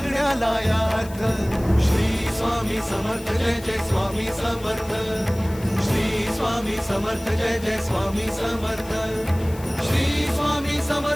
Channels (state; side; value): noise; left; hiss, 19 dB below the sound